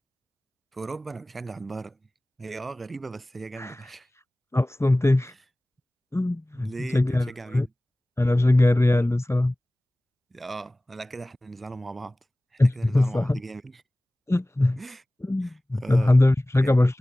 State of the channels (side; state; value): both; normal; correlation 0.98